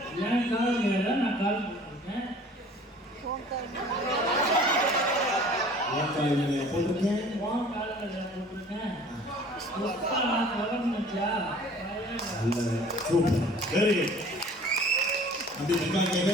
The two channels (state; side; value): normal; both; correlation 0.49